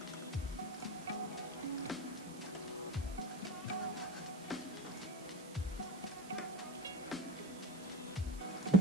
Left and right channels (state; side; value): noise; right; hiss, 17 dB below the sound